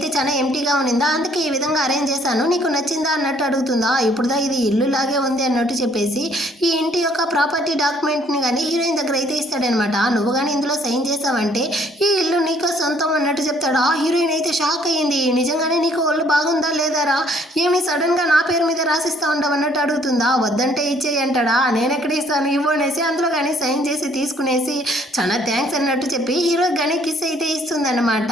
చాలా ఎంటీగా ఉన్నిందా, అందుకే ఈ విధంగా అరేంజ్ చేశాను, నీకు నచ్చిందా అన్నట్టు అడుగుతుందా. ఇప్పుడుదా ఇది ఇల్లు లాగే ఉంది అన్నట్టు చెప్పేసి ఈ ఇంటి యొక్క ప్రాపర్టీ డాక్యుమెంట్ని కానీ హీరోయిన్ దగ్గర అయితే ఇస్తాడనమాట. నువ్వు కానీ ఇందులో సైన్ చేసావంటే ఈ ఇల్లు నీకు సొంతం అన్నట్టు చెప్తాడా. హీరోయిన్ అయితే షాక్ అయ్యింది, నిజంగానే నీకు ఒళ్ళు బాగుందా లేదారా, ఏమి సడన్ గా నా పేరు మీద రాసిస్తా ఉండవు అన్నట్టు అడుగుతుందా. వద్దంటే ఇచ్చేయి అంటాడా. నేను ఎక్కడ ఇస్తాను ఇవ్వు అనేసి అందులో కానీ సైన్ చేసి తీసుకునేసి చాలా థ్యాంక్స్ అన్నట్టు చెప్పి హీరో కానీ కిస్ అయితే ఇస్తుంది అనమాట.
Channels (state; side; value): normal; both; correlation 0.62